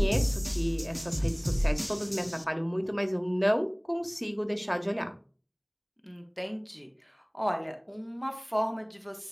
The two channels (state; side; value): identical; both; correlation 1.00